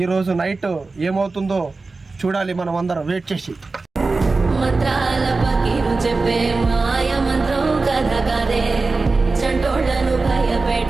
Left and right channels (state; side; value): quieter; left; 3.8 dB